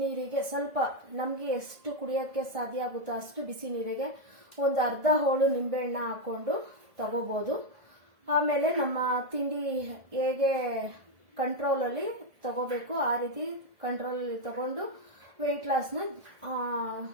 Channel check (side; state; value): left; late; 1.6 ms